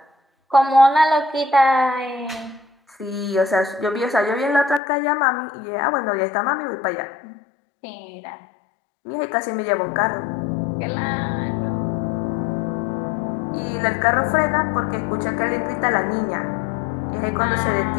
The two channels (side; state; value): right; drops out; at 4.8 s